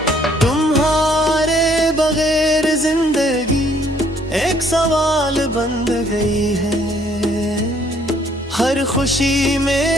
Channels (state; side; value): normal; both; correlation 0.63